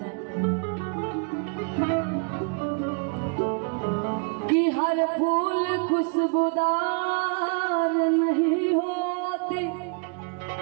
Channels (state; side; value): quieter; left; 36.7 dB